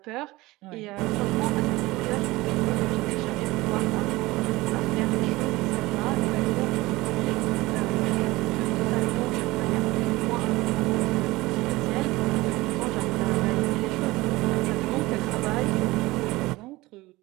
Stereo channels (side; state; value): left; quieter; 20.1 dB